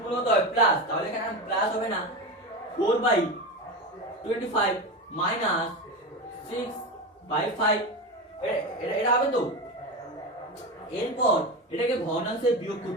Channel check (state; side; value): normal; both; correlation 0.21